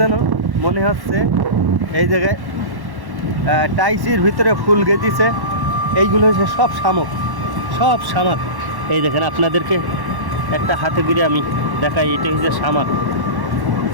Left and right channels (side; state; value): left; late; 1.1 ms